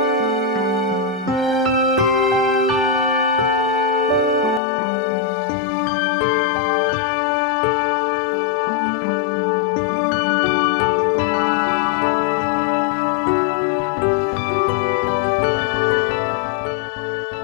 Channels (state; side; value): drops out; right; at 4.6 s